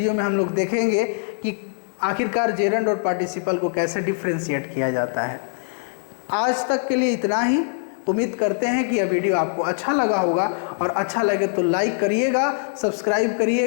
में हम लोग देखेंगे कि आखिरकार जेरंड और पार्टिसिपल को कैसे डिफ्रेंशिएट किया जाता है। आज तक के लिए इतना ही। उम्मीद करते हैं कि यह वीडियो आपको अच्छा लगा होगा, और अच्छा लगे तो लाइक करिएगा, सब्सक्राइब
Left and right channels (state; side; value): silent; right; digital silence